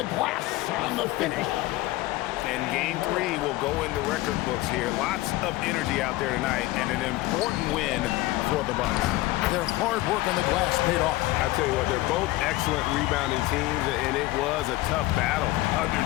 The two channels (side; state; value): right; quieter; 18.3 dB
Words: glass on the finish. And game 3 will go into record books here. Lots of energy out there tonight and an important win for the Bucks. Their hard work on the glass paid off. I tell you what, they're both excellent rebounding teams, and it was a tough battle